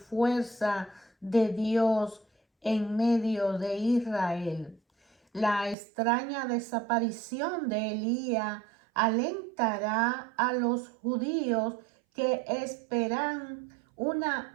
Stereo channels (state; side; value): drops out; left; at 5.8 s